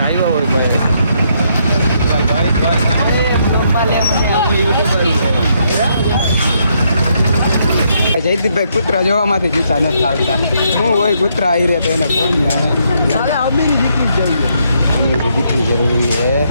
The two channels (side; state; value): both; inverted; correlation -0.74